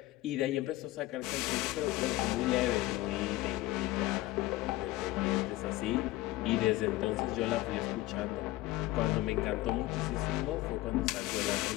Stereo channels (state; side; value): quieter; right; 17.7 dB